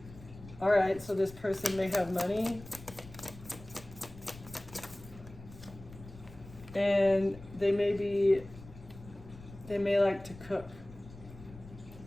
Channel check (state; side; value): noise; left; rumble, 17 dB below the sound